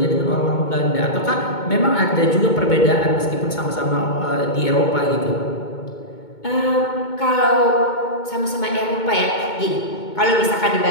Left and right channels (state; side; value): late; right; 2.2 ms